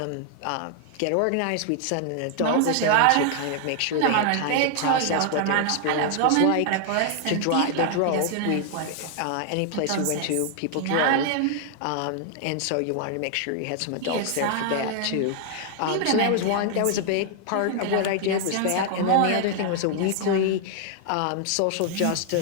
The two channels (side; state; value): both; different; correlation 0.00